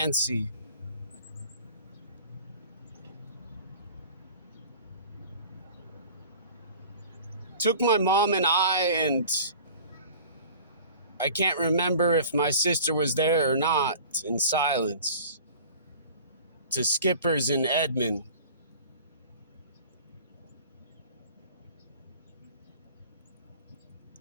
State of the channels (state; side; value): inverted; both; correlation -0.43